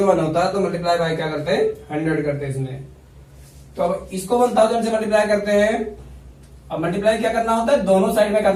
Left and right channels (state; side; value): identical; both; correlation 1.00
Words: होता तो मल्टीप्लाई बाय क्या करते हैं? 100 करते हैं इसमें। तो अब इसको 1000 से मल्टीप्लाई करते हैं। अब मल्टीप्लाई क्या करना होता है? दोनों साइड में